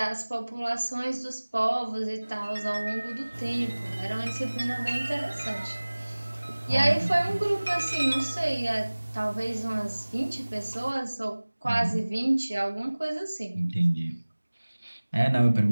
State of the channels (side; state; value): both; inverted; correlation -1.00